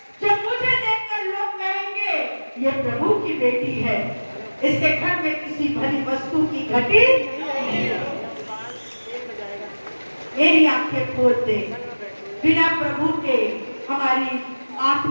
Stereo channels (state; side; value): inverted; both; correlation -1.00